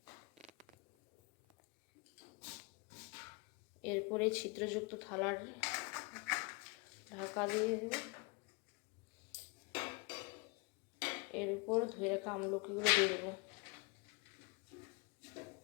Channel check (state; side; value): quieter; right; 28.9 dB